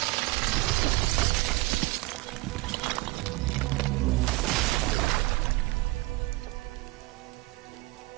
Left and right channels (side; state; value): left; quieter; 21.5 dB